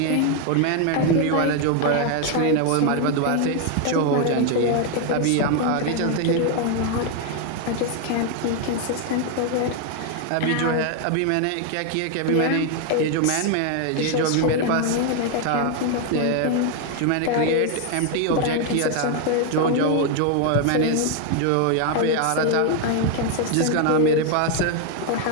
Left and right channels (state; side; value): different; both; correlation 0.01